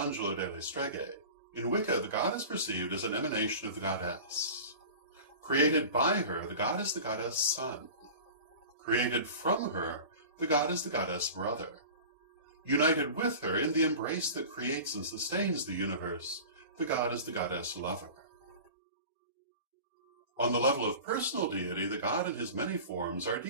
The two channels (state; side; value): inverted; both; correlation -0.37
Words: delle Streghe, in Wicca the god is perceived as an emanation of the goddess. Created by her, the god is the goddess son. Created from her, the god is the goddess brother. United with her in the embrace that creates and sustains the universe, the god is the goddess lover. On the level of personal deity, the god in his many forms are